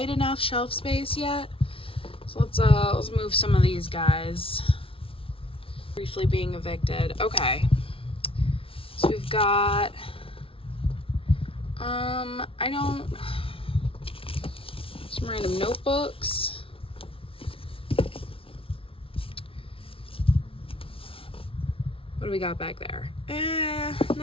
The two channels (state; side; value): late; right; 0.26 ms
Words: enough shelf space yet. So let's move some of these guys. Briefly being evicted. Okay. So we've got some random notebooks. What do we got back there?